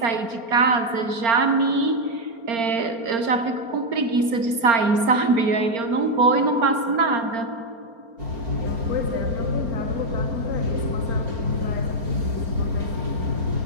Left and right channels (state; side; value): late; left; 4.3 ms